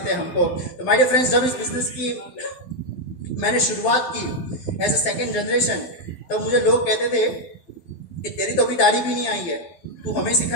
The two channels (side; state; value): right; late; 12 ms